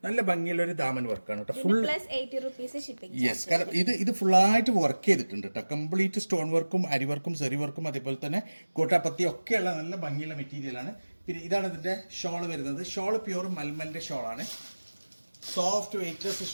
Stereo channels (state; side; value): inverted; both; correlation -1.00